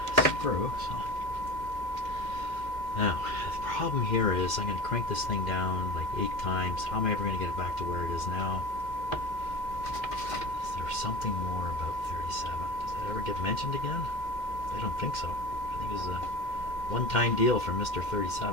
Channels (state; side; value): late; right; 2.1 ms